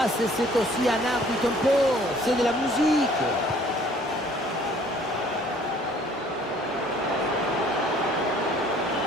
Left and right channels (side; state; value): both; normal; correlation 0.56